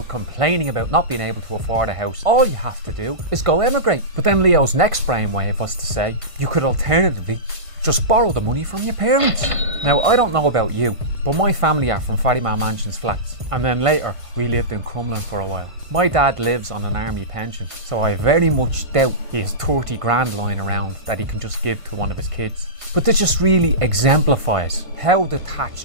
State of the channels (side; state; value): left; late; 1.5 ms